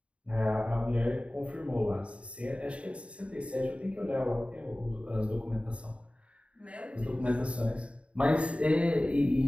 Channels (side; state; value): left; late; 0.061 ms